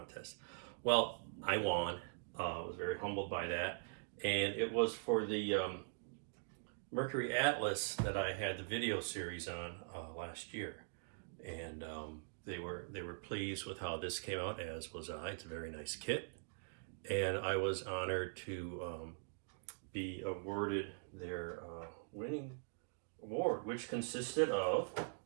Well, I won. I was very humbled by that, and it was for the Mercury-Atlas that I had the video series on last year, and they were pleased with how this came out, as was I. It's a very nice kit, and I was honored to be awarded their winning award, which consisted of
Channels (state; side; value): silent; left; digital silence